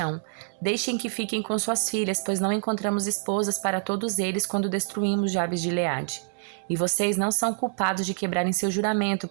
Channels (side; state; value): left; silent; digital silence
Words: Deixem que fiquem com suas filhas, pois não encontramos esposas para todos eles quando destruímos Jabes de Gileade. E vocês não são culpados de quebrarem seu juramento,